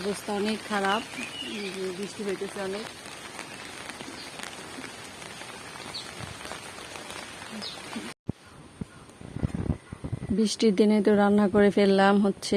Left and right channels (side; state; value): both; identical; correlation 1.00